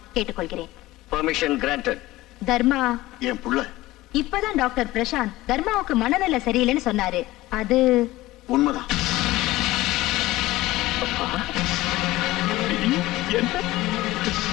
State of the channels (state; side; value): quieter; right; 17.9 dB